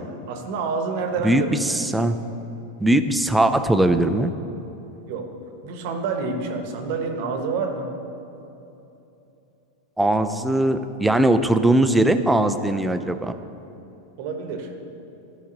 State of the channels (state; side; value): normal; both; correlation 0.67